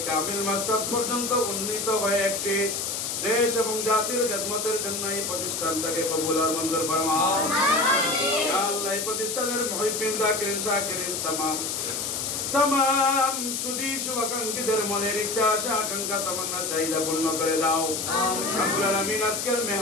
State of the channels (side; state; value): left; noise; hiss, 2 dB below the sound